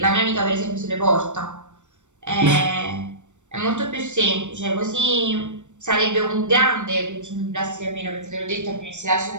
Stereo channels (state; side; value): late; left; 0.84 ms